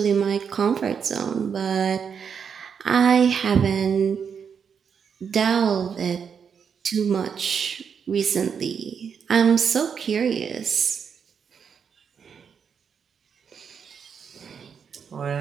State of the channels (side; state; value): left; quieter; 6.9 dB